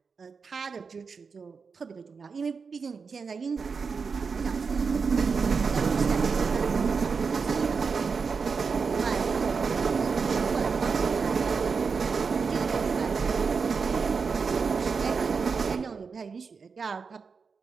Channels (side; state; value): left; quieter; 5.3 dB